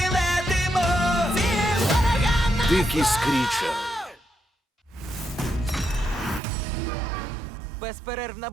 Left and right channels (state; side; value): drops out; left; at 6.4 s